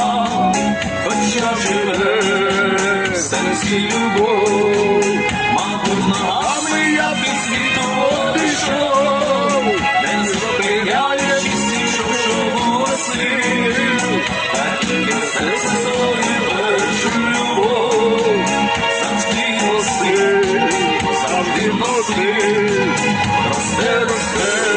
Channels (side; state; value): both; identical; correlation 1.00